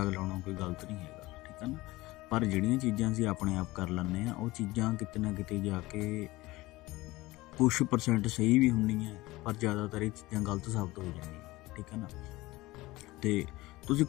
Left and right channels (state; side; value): quieter; right; 19.6 dB